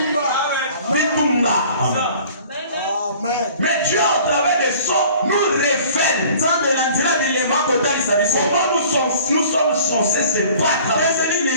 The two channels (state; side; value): inverted; both; correlation -0.49